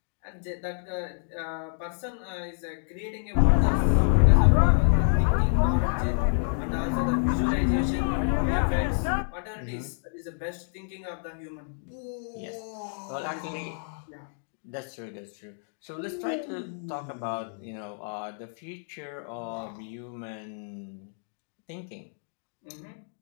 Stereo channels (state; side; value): silent; right; digital silence